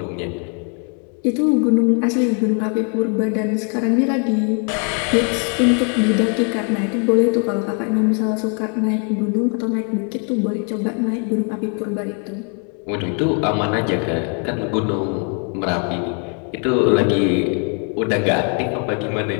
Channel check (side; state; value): right; quieter; 39.7 dB